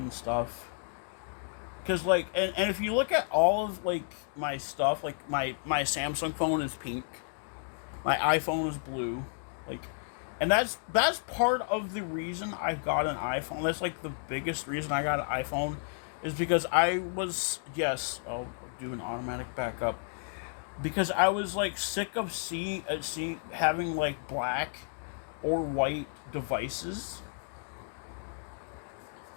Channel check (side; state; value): right; silent; digital silence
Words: stuff, because like and if you look at all of like my stuff, like my Samsung phone is pink, my iPhone is blue, like, and that's part of the reason I got an iPhone. That's like the biggest reason I got an iPhone, is because I'll do an automatic backup, because I was like sick of seeing having like black or white devices.